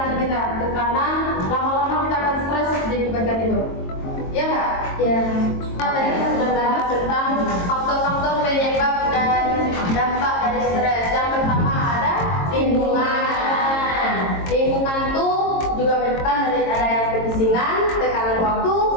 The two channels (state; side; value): late; right; 22 ms